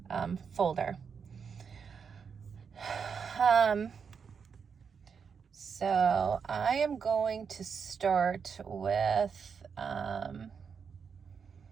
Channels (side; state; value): left; quieter; 6.3 dB